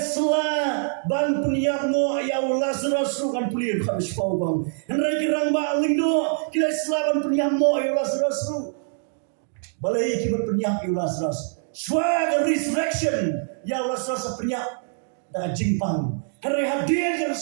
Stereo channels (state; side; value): silent; left; digital silence